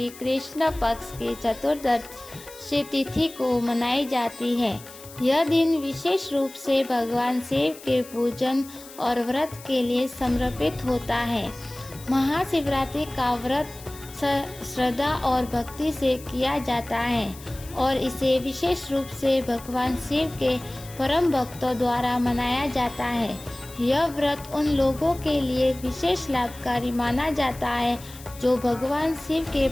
कृष्ण पक्ष की चतुर्दशी तिथि को मनाई जाती है। यह दिन विशेष रूप से भगवान शिव के पूजन और व्रत के लिए समर्पित होता है। महाशिवरात्रि का व्रत श्रद्धा और भक्ति से किया जाता है और इसे विशेष रूप से भगवान शिव के परम भक्तों द्वारा मनाया जाता है। यह व्रत उन लोगों के लिए विशेष लाभकारी माना जाता है जो भगवान शिव के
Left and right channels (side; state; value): left; noise; hiss, 18 dB below the sound